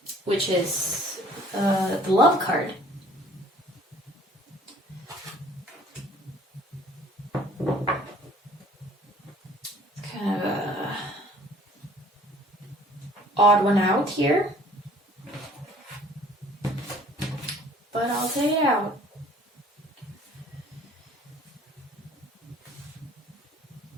Which is the love card. It's kind of a odd one out here. But I'll take it out.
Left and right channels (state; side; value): normal; both; correlation 0.54